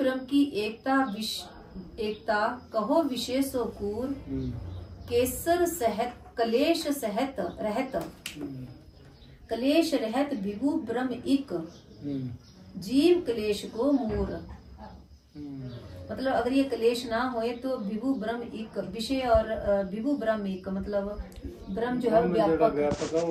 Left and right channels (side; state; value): both; identical; correlation 1.00